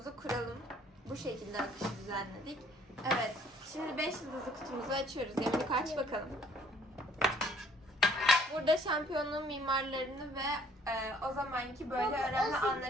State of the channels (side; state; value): both; normal; correlation 0.59